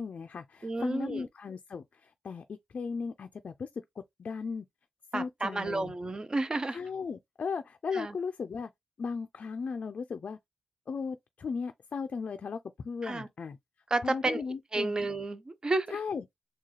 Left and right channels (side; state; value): both; normal; correlation 0.86